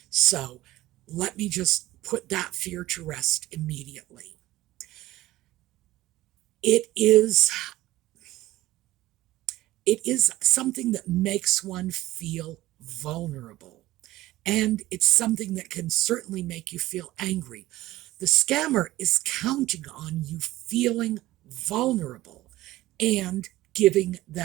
So let me just put that fear to rest immediately. It is something that makes one feel vulnerable. And it's something that can certainly make you feel angry. The scammer is counting on you feeling vulnerable and giving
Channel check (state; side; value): quieter; left; 16.6 dB